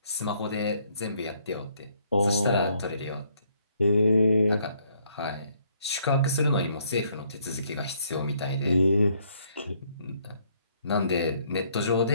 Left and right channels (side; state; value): both; inverted; correlation -0.68